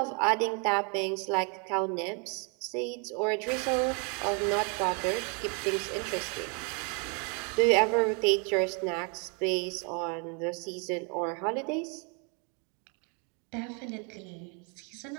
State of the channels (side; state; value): left; quieter; 36.3 dB